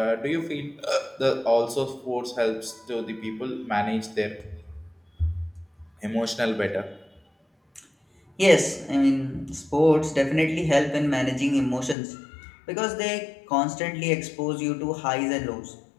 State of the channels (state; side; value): drops out; right; at 12.0 s